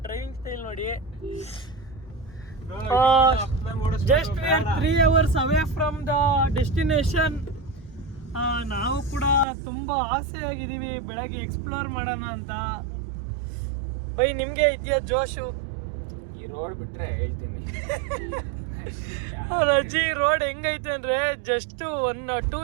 ಡ್ರೈವಿಂಗ್ ಸ್ಟೈಲ್ ನೋಡಿ. Just we are 3 hours away from the destination. ನಾವು ಕೂಡ ತುಂಬ ಆಸೆ ಆಗಿದ್ದೀವಿ ಬೆಳಗ್ಗೆ ಎಕ್ಸ್ಪ್ಲೋರ್ ಮಾಡೋಣ ಅಂತ. ಬೈ, ನಿಮಗೆ ಇದೆಯಾ ಜೋಶು? ಈ ರೋಡ್ ಬಿಟ್ರೆ ಹೇಳ್ತೀನಿ. ಅಜ್ಜಿ, ರೋಡ್ ಹೆಂಗೈತೆ ಅಂದರೆ ಜಸ್ಟ್ 1-2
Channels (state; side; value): drops out; left; at 9.5 s